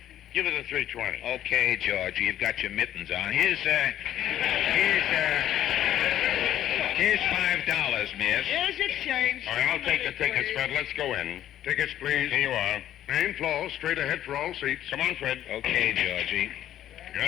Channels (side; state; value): right; quieter; 11.9 dB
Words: give it a $3.20. Okay, Georgie, you've got your mittens on. Here's $5, miss. Here's your change. All right, I'll take the tickets, Fred. Let's go in. Tickets, please. Here you are. Main floor, straight ahead for all seats. Come on, Fred. Okay, Georgie.